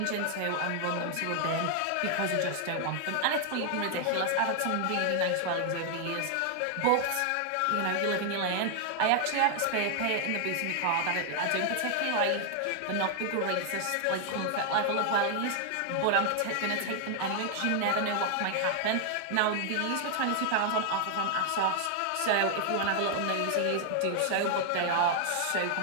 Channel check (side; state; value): both; different; correlation 0.00